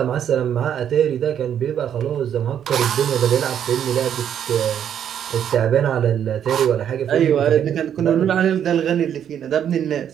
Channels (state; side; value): quieter; left; 9.3 dB